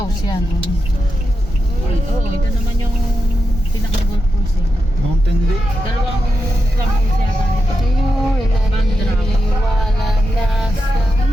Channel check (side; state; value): both; normal; correlation 0.87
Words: yan. Oo, ito naman yung pinaka-golf course eh. Mountain Lake. Dalawang clubhouse yata nito. Wala na sa